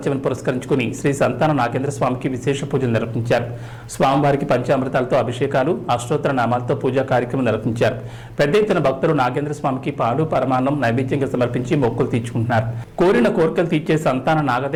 పురస్కరించుకుని శ్రీ సంతాన నాగేంద్ర స్వామికి విశేష పూజలు నిర్వహించారు. స్వామివారికి పంచామృతాలతో అభిషేకాలు, అష్టోత్తర నామాలతో పూజా కార్యక్రమం నిర్వహించారు. పెద్ద ఎత్తున భక్తులు నాగేంద్ర స్వామికి పాలు, పరమాన్నం నైవేద్యంగా సమర్పించి మొక్కులు తీర్చుకుంటున్నారు. కోరిన కోరికలు తీర్చే సంతాన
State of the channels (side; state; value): both; identical; correlation 1.00